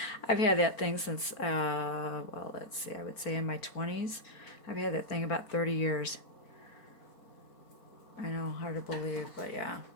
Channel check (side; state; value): right; late; 4.4 ms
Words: had that thing since, well, let's see, I would say in my 20s. I've had that thing about 30 years. I know, hard to believe, but yeah.